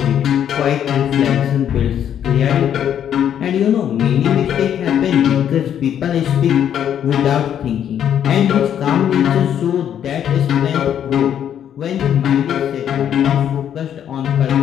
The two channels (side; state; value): right; quieter; 9.6 dB